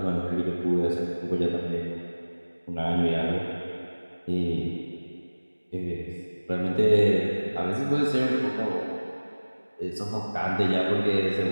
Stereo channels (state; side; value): inverted; both; correlation -1.00